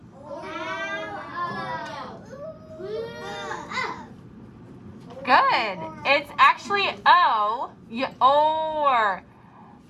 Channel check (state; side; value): identical; both; correlation 1.00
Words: Good. It's actually O. Or.